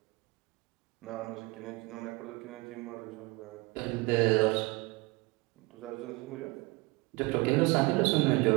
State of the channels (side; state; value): left; quieter; 24.8 dB